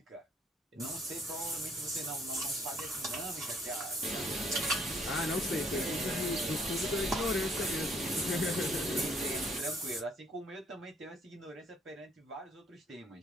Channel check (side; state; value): both; normal; correlation 0.63